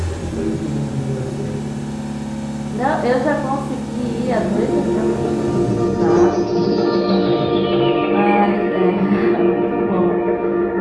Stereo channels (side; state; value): both; identical; correlation 1.00